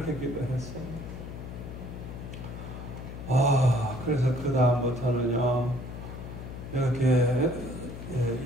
기도했어요. 그래서 그 다음부터는요 이렇게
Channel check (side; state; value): left; noise; hum, 10 dB below the sound